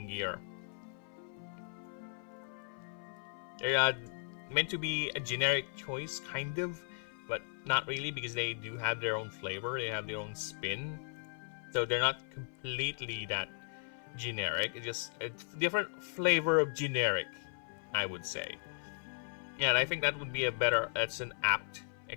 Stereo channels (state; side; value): silent; right; 53 dB below the other